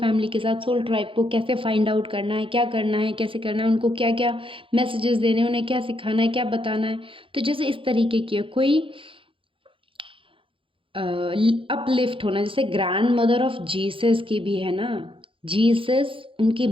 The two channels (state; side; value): late; left; 0.25 ms